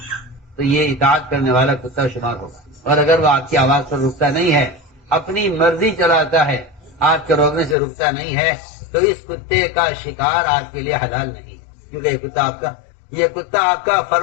تو یہ اطاعت کرنے والا کتا شمار ہوگا، اور اگر وہ آپ کی آواز پر رکتا نہیں ہے، اپنی مرضی چلاتا ہے، آپ کے روکنے سے رکتا نہیں ہے، تو اس کتے کا شکار آپ کے لیے حلال نہیں، کیونکہ یہ کتا آپ کا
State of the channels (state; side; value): drops out; right; at 7.8 s